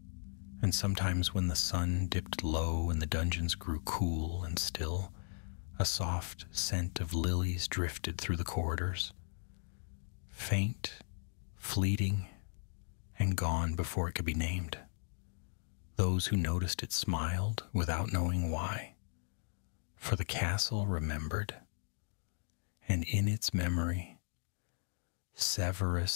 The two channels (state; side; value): silent; right; 53 dB below the other